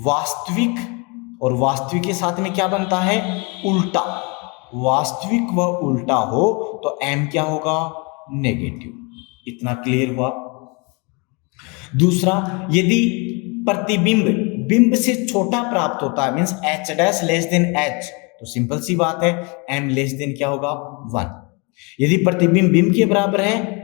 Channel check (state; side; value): quieter; right; 30.6 dB